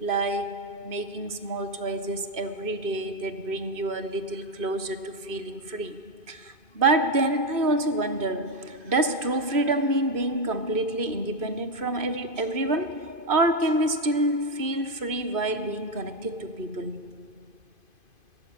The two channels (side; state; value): left; late; 2.5 ms